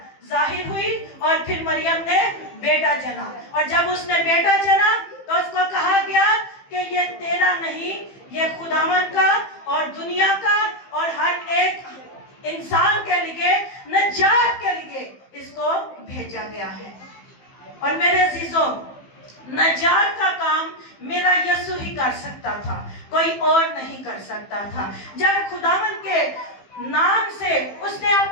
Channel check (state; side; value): late; right; 15 ms